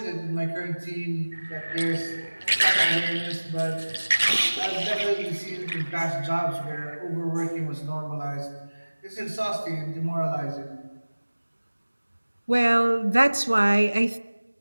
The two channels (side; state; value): both; inverted; correlation -1.00